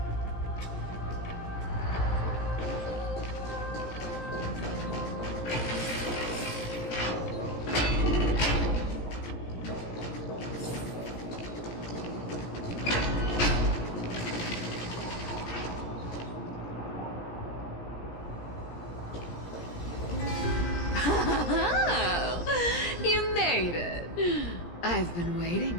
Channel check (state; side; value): late; right; 17 ms